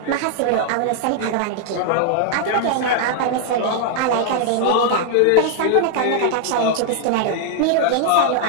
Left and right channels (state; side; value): different; both; correlation -0.01